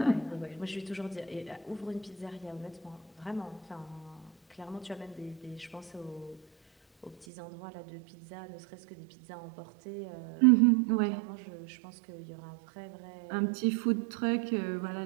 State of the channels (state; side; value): drops out; left; at 7.2 s